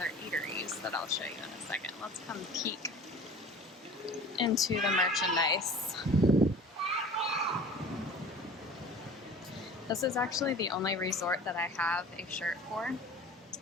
eateries that I'll show you in a second. Let's come peek into the merchandise. This is actually the only resort that I have a shirt for,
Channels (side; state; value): both; normal; correlation 0.42